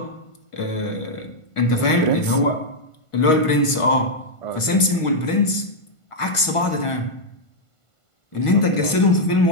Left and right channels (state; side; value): late; right; 1.5 ms